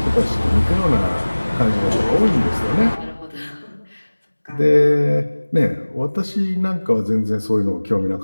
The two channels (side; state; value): both; inverted; correlation -1.00